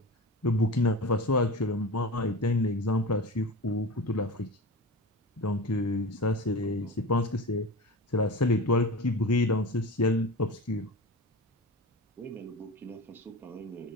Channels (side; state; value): both; normal; correlation 0.30